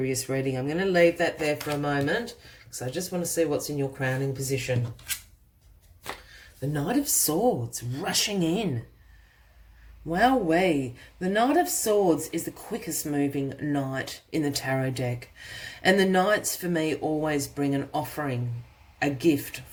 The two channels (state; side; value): identical; both; correlation 1.00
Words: reading. I'm going to leave that there for a moment, because I just want to see what's in your crowning position. The Knight of Swords rushing in. Wowee. The Knight of Swords is the quickest moving knight in the tarot deck. And the knights for me always bring an offering, a gift